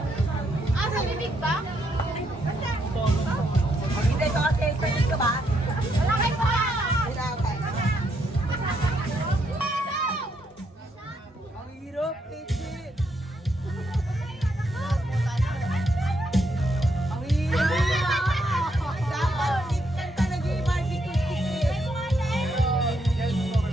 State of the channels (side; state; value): both; normal; correlation 0.76